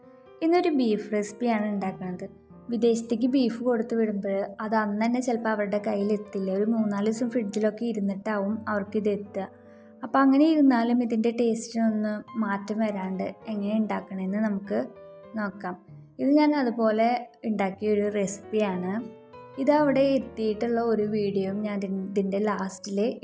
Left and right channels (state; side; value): identical; both; correlation 1.00